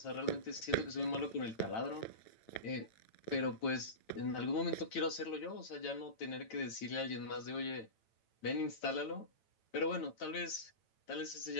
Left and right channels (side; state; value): right; late; 9.0 ms